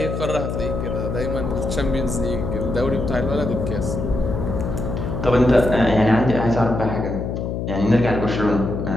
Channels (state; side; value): noise; left; hum, 3 dB below the sound